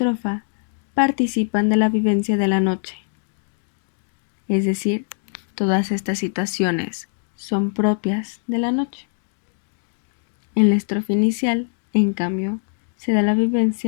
participan de la vivencia de la noche. Es decir, todas estas situaciones son propias de la noche. En la estrofa inicial, en cambio, se da la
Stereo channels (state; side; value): silent; right; 60 dB below the other